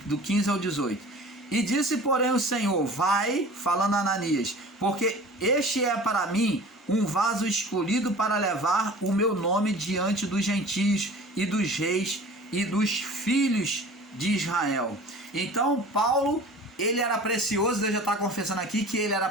do 15 ao 18. E disse, porém, o Senhor, vai, falando a Ananias, porque este é para mim um vaso escolhido para levar o meu nome diante dos gentios e dos reis e dos filhos de Israel. Então, Paulo, ele era precioso, Deus já está confessando aqui que ele era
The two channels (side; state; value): both; normal; correlation 0.42